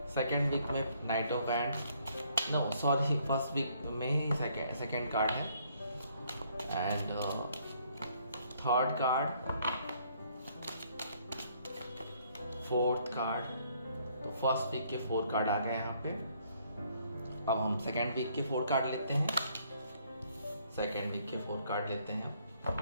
सेकेंड वीक में knight of wand, first week में सेकेंड कार्ड है, and third card, fourth card. तो फर्स्ट वीक के 4 कार्ड आ गए यहाँ पे। अब हम सेकेंड वीक के 4 कार्ड लेते हैं।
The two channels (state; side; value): inverted; both; correlation -0.66